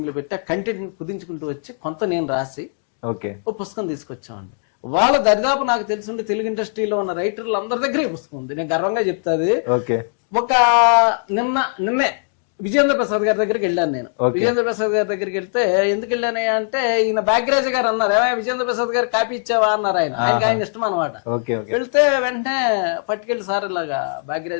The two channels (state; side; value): silent; right; 66 dB below the other